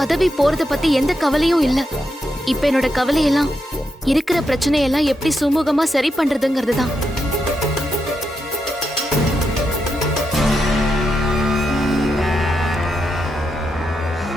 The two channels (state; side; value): normal; both; correlation 0.84